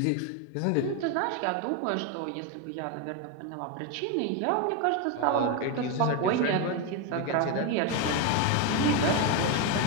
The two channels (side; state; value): both; different; correlation 0.02